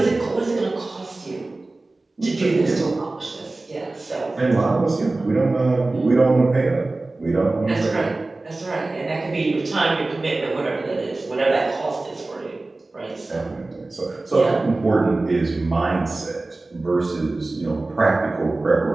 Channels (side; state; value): left; quieter; 3.1 dB